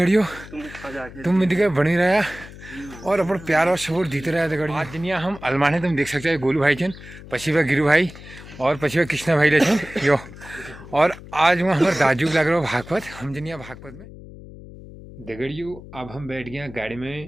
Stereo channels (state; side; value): noise; left; hum, 16 dB below the sound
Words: तुम मिलकर बनी रहा और अपन प्यार और सपोर्ट जीते रहा दगड़ियों। आज जनिया हम अलमाने तुम देख सकते हो गोलू भाई चन पछिवा गिरू भाई और पछिवा कृष्णा भाई लेचन यो। और आज वहाँ हमारे दाजू लग रहा भागवत हम जनिया भागवत में दगड़ियों। अब हम बैठ गए गाड़ी